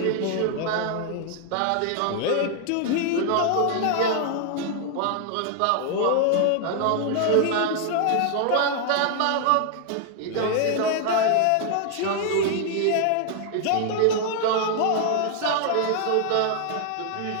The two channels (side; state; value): both; different; correlation 0.00